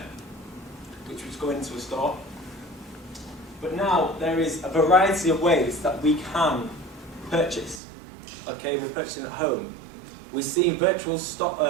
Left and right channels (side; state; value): left; drops out; at 7.8 s